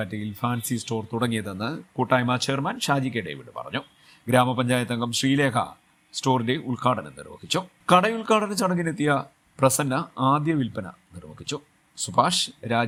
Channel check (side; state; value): both; identical; correlation 1.00